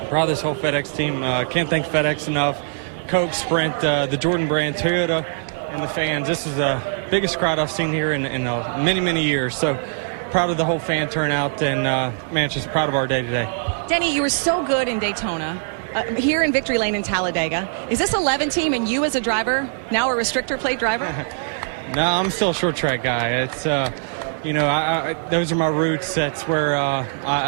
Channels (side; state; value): left; silent; 64 dB below the other